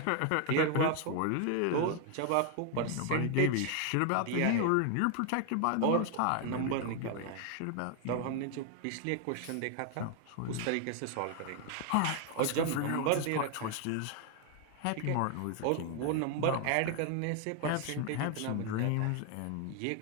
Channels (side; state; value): both; different; correlation 0.00